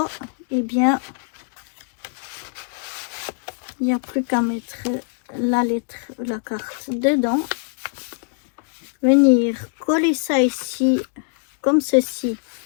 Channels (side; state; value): right; silent; 56 dB below the other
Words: eh bien, il n'y a plus qu'à mettre la lettre, la carte dedans. Venir coller ça ici, comme ceci,